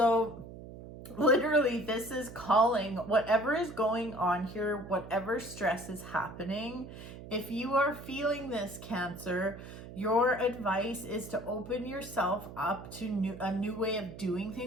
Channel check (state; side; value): noise; right; hum, 13 dB below the sound